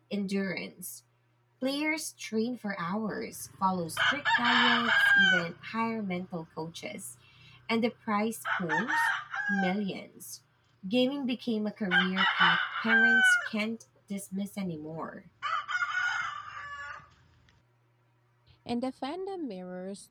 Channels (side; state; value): both; identical; correlation 1.00